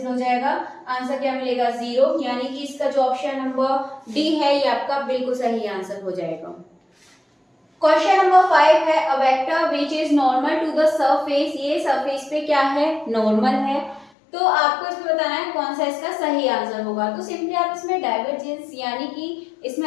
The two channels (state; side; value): drops out; right; at 14.1 s